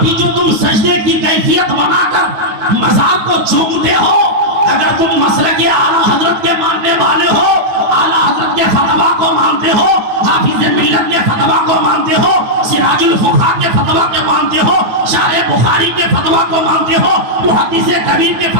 بھی جو تم سجدے کی کیفیت بنا کر مزار کو چومتے ہو، اگر تم مسلک اعلیٰ حضرت کے ماننے والے ہو، اعلیٰ حضرت کے فتویٰ کو مانتے ہو، حافظ ملت کے فتویٰ کو مانتے ہو، سراج الفقہاء کے فتویٰ کے مانتے ہو، شارح بخاری کے فتویٰ کو مانتے ہو، محدث کبیر کے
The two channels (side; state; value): left; late; 9.4 ms